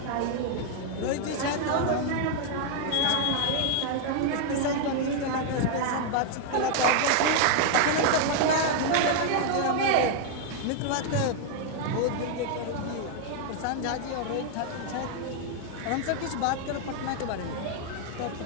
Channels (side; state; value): both; different; correlation 0.00